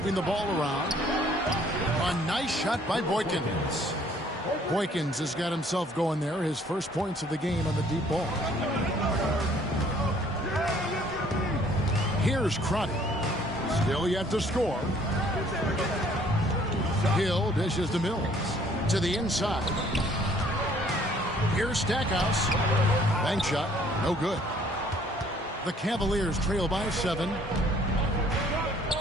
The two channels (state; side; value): normal; both; correlation 0.60